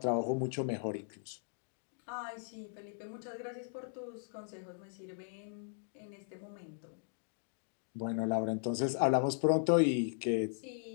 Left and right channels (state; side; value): silent; right; digital silence